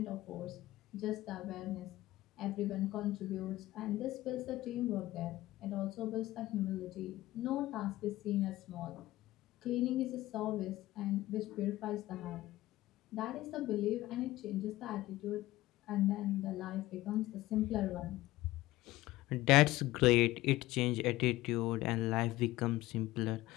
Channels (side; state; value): right; quieter; 17.1 dB